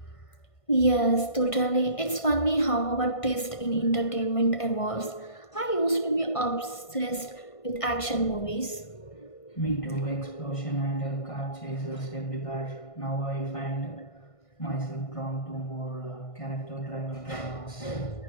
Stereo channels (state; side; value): late; right; 1.5 ms